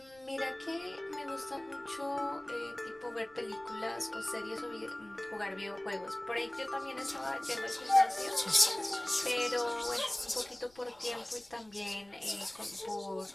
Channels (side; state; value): left; noise; rumble, 28 dB below the sound